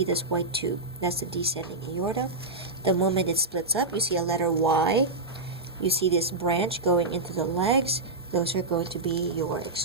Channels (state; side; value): quieter; left; 3.1 dB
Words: this white tube. That's the descending aorta. The moment it splits up, you see a letter Y. You see this branch going into the legs. Those are going to be your